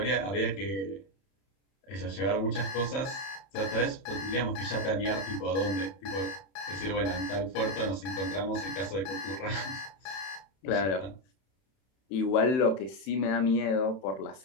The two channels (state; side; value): late; right; 31 ms